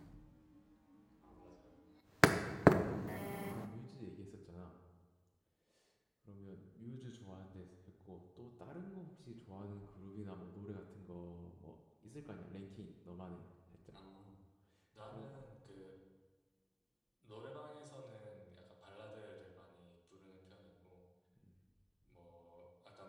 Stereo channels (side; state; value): both; identical; correlation 1.00